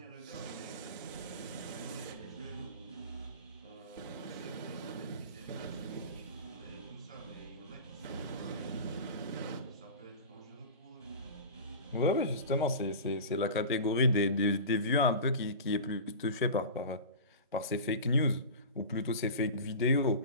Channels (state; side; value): inverted; both; correlation -0.32